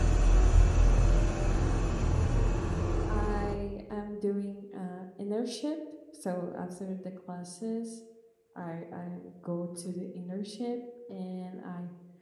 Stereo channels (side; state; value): both; identical; correlation 1.00